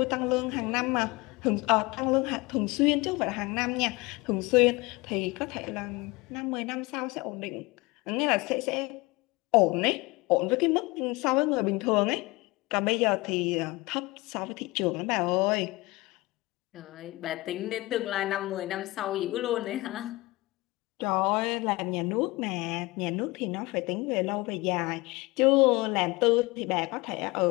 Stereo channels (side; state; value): right; quieter; 22.4 dB